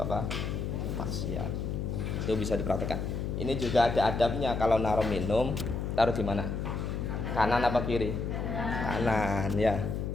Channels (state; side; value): noise; left; hum, 2 dB below the sound